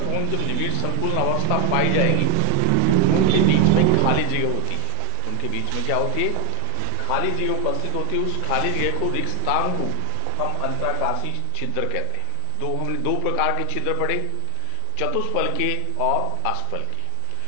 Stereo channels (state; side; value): different; both; correlation 0.01